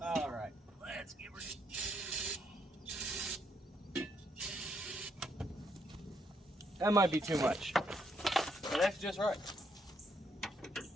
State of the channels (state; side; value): normal; both; correlation 0.74